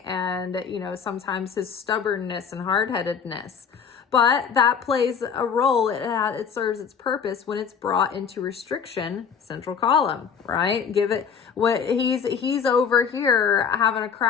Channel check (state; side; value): quieter; right; 6.8 dB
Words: and, you know, sometimes his stubbornness and hard-headedness. But that plays a role. It serves its purpose when it's brought into restriction, central column, right? Give it what he's over here having a